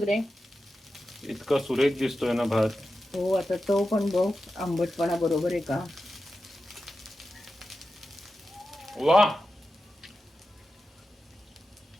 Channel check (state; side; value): normal; both; correlation 0.91